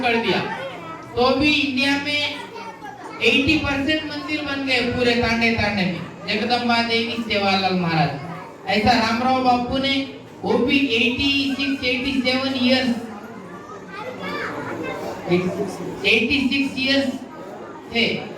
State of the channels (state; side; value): identical; both; correlation 1.00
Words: कर दिया। तो भी इंडिया में 80% मंदिर बन गए पूरे तांडे में, जगदम्बा देवी सेवालाल महाराज। ऐसा रामराव बापू ने वो भी 86 इयर्स थे,